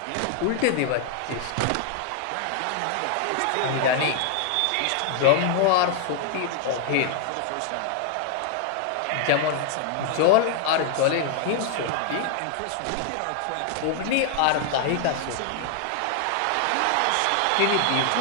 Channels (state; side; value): different; both; correlation 0.00